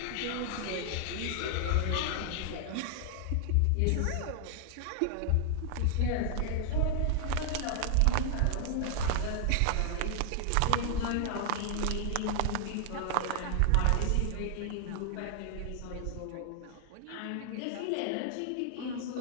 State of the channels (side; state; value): both; different; correlation 0.00